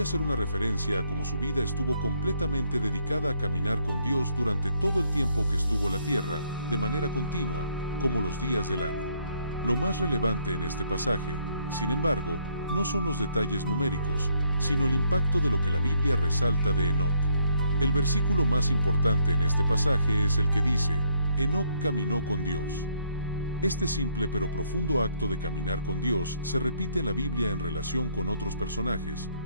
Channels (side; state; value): both; inverted; correlation -0.68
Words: ser una referencia a cómo su vida estuvo completamente dedicada a caminar con Dios durante todo el tiempo que estuvo en la tierra, de manera continua, como los días del año. Lo más relevante en este pasaje, sin embargo, no son los detalles numéricos, sino el impacto de lo que la Biblia resalta de Enoc. El versículo más importante en este pasaje es el que dice, Enoc caminó con Dios. Este simple pero profundo acto de caminar con Dios se repite en la Biblia en relación con otros personajes,